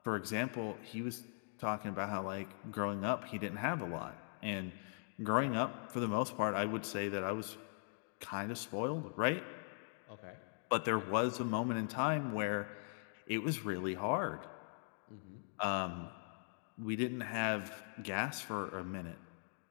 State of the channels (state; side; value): silent; right; digital silence